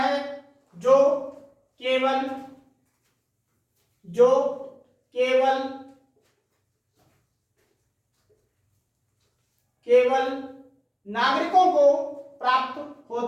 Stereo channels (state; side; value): identical; both; correlation 1.00